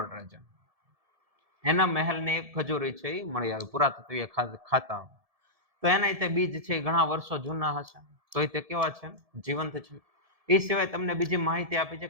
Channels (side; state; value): left; late; 1.7 ms